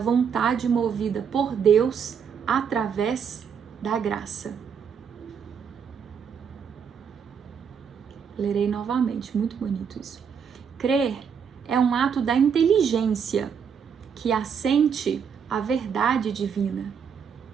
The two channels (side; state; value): left; quieter; 7.0 dB